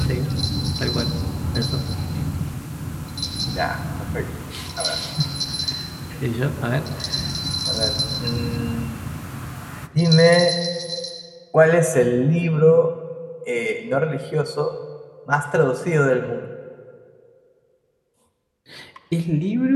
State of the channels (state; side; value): identical; both; correlation 1.00